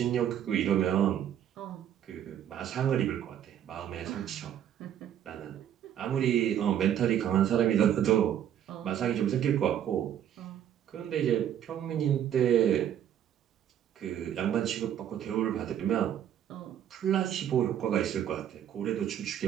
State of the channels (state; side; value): quieter; left; 10.2 dB